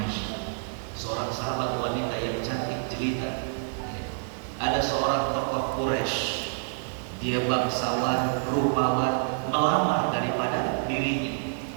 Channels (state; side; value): silent; left; digital silence